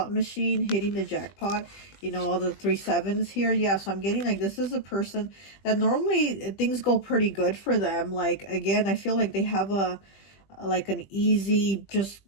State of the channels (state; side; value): late; right; 20 ms